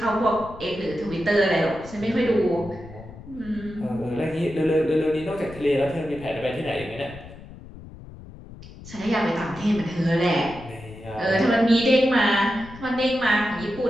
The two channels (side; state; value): left; noise; rumble, 16 dB below the sound